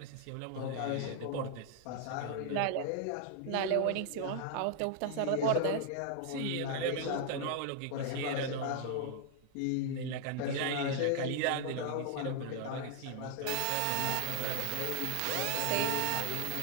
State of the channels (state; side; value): different; both; correlation 0.00